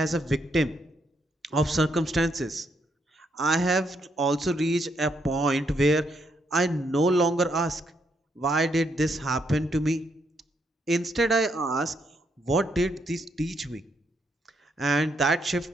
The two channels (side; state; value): both; normal; correlation 0.76